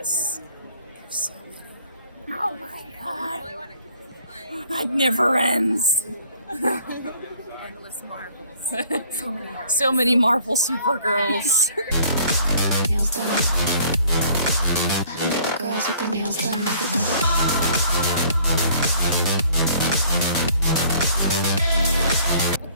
There's so many. Oh my god! It never ends. Endless marvels. So many marvels. So many Marvel Supergirls. Nails done. I got the girls with the nails done.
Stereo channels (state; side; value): inverted; both; correlation -0.56